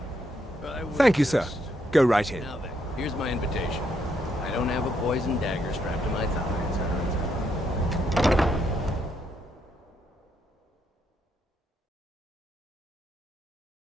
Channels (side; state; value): both; normal; correlation 0.75